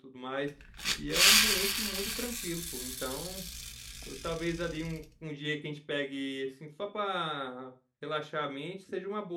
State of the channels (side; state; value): both; identical; correlation 1.00